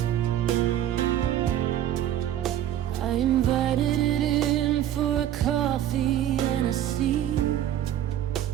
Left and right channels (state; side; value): quieter; left; 11.6 dB